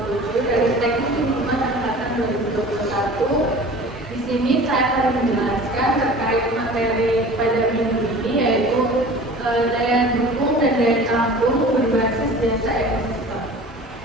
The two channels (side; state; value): both; normal; correlation 0.41